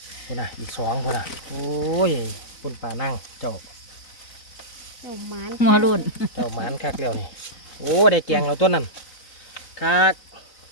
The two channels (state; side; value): late; right; 4.0 ms